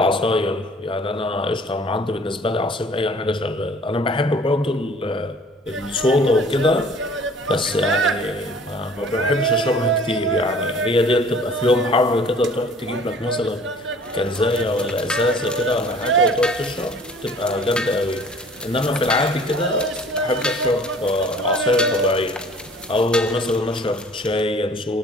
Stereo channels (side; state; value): both; normal; correlation 0.51